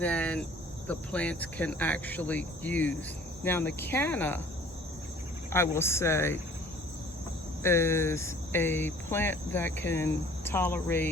the plants can actually use. Now the Canna, I will say, is a plant that can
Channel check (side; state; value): both; normal; correlation 0.52